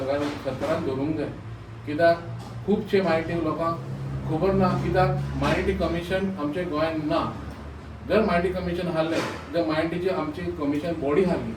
दवरूंक जाय. कित्याक खुबशे मायनॉरिटी लोकांक खबर ना, कित्याक मायनॉरिटी कमिशन आमच्या गोंयांत ना. जर मायनॉरिटी कमिशन आहलें जर मायनॉरिटीची आमची कमिशन बॉडी आहली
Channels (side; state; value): both; identical; correlation 1.00